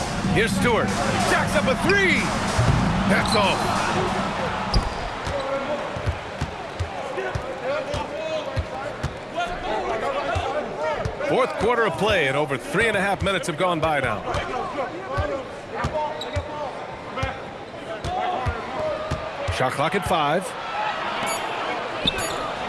Here's Stewart. Jacks up a 3. That's all. Fourth quarter of play, and over 3.5 minutes have gone by now. Shot clock at 5.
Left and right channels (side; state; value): both; identical; correlation 1.00